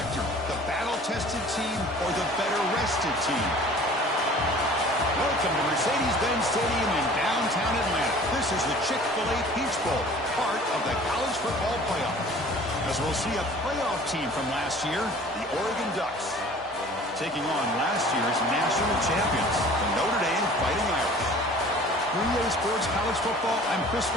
the battle-tested team or the better-rested team? Welcome to Mercedes-Benz Stadium in downtown Atlanta. This is the Chick-fil-A Peach Bowl, part of the college football playoff. As we'll see a playoff team from last year, the Oregon Ducks, taking on last year's national champions, the Notre Dame Fighting Irish. 3A Sports College Football, I'm Chris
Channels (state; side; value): normal; both; correlation 0.47